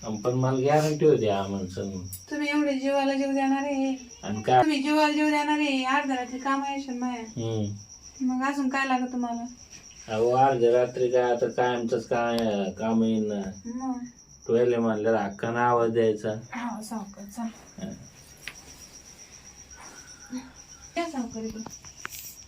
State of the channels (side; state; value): both; identical; correlation 1.00